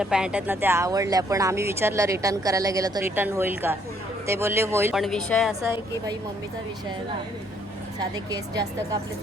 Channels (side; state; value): both; normal; correlation 0.67